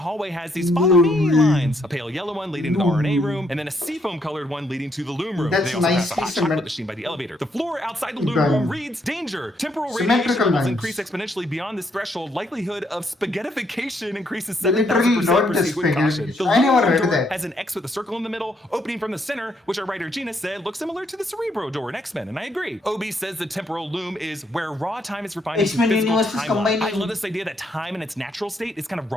hallway has these follow me lines, a pale yellow one leading to the RNA room, and then a seafoam colored one leading to the loom room. They also have a hot chocolate machine by the elevator. The floor outside the loom room reads danger. Temporal radiation levels increase exponentially beyond this threshold. Likelihood of spaghettification increases 7,000%. Proceed with caution. The loom door has an X with a circle in the middle, opening from the center, which our writer Gina said looks similar to the Cerebro door in X-Men, and I agree. Obi says the temporal loom is where raw time is refined into physical timeline. I love this idea that time in its natural state is kind of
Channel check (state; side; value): normal; both; correlation 0.73